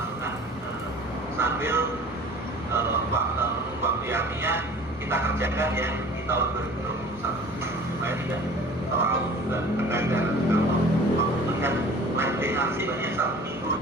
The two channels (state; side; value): normal; both; correlation 0.45